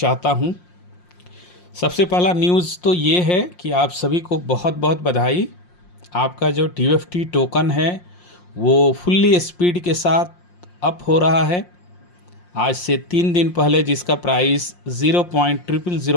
हूं। सबसे पहला न्यूज़ तो ये है कि आप सभी को बहुत बहुत बधाई। आपका जो TFT टोकन है वो फुल्ली स्पीड के साथ अप हो रहा है। आज से 3 दिन पहले जिसका प्राइस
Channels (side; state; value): right; late; 5.6 ms